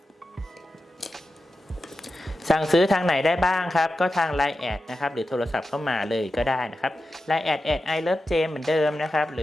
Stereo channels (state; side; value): normal; both; correlation 0.92